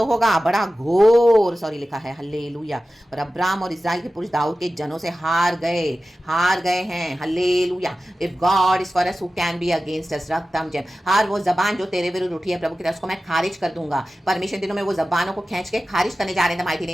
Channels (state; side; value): normal; both; correlation 0.95